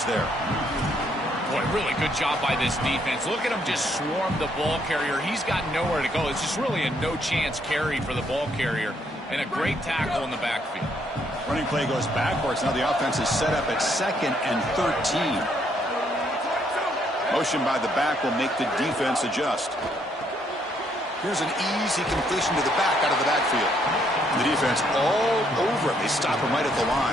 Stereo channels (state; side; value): normal; both; correlation 0.71